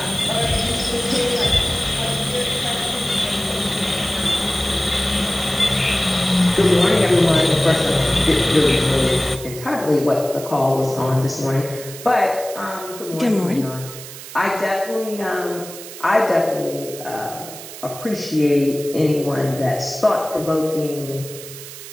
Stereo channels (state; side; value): noise; right; hiss, 13 dB below the sound